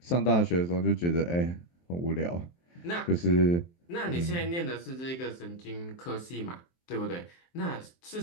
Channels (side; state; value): right; late; 23 ms